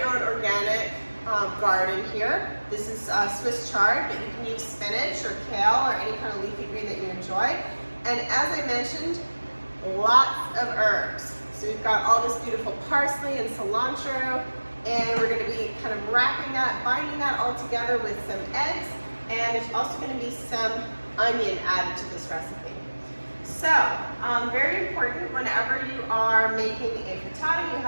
own organic garden here. This is Swiss chard, but you can use spinach or kale or any kind of leafy green that you enjoy. And as I mentioned, lots of herbs. So we've got all this beautiful parsley and cilantro, and we're going to be kind of wrapping that, binding that all together with some eggs, and there's also going to be some onion added to this recipe. So, very important, whenever you are making a frittata, you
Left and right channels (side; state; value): both; inverted; correlation -1.00